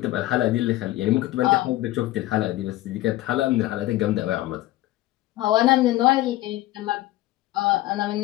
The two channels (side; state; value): right; quieter; 16.5 dB